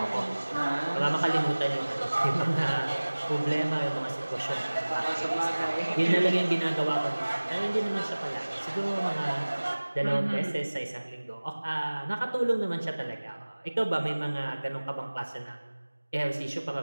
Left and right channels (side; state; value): both; inverted; correlation -1.00